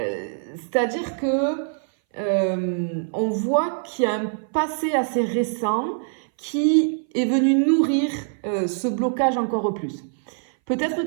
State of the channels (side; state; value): left; silent; 60 dB below the other